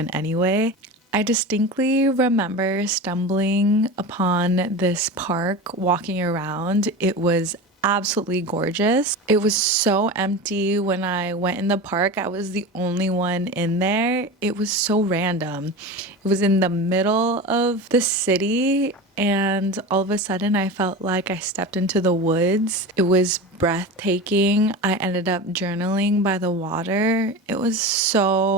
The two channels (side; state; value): both; normal; correlation 0.28